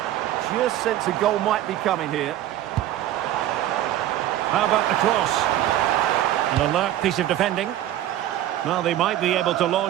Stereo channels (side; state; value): left; quieter; 13.0 dB